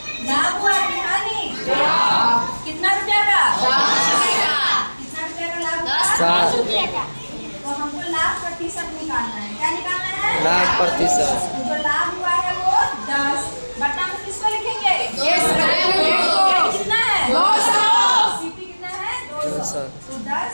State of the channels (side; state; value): both; inverted; correlation -1.00